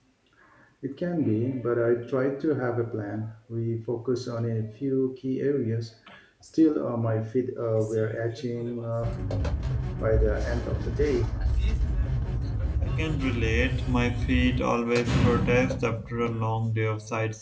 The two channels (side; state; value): both; identical; correlation 1.00